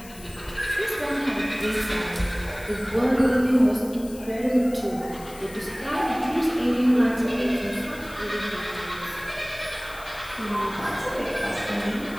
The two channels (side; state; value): left; noise; hiss, 19 dB below the sound